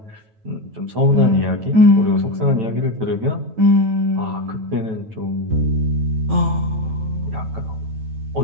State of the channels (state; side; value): late; left; 9.1 ms